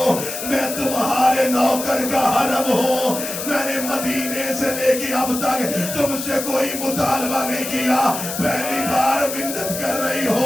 میں تمہارے نوکر کا حرم ہوں، میں نے مدینے سے لے کے اب تک تم سے کوئی مطالبہ نہیں کیا، پہلی بار منت کر رہی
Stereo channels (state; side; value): noise; left; hiss, 6 dB below the sound